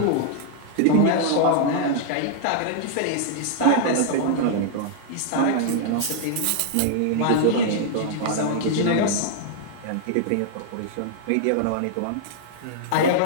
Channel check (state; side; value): different; both; correlation -0.01